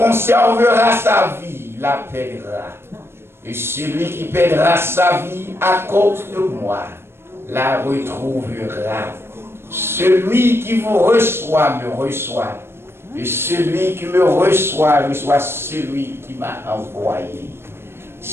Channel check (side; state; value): left; late; 0.12 ms